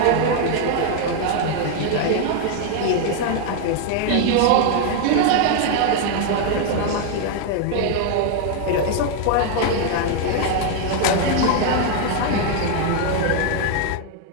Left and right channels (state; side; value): different; both; correlation 0.00